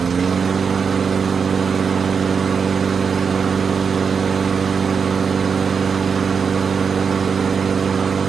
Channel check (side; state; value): left; quieter; 6.1 dB